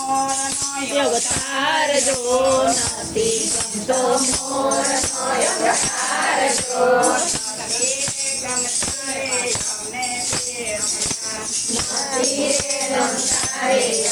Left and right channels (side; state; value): right; noise; hiss, 27 dB below the sound